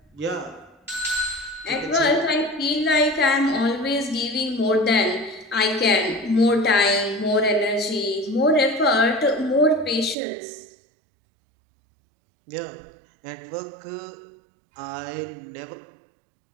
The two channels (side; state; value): left; drops out; at 10.2 s